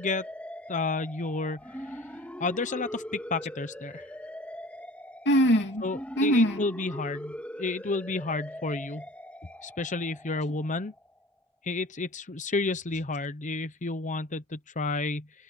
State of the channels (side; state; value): both; normal; correlation 0.44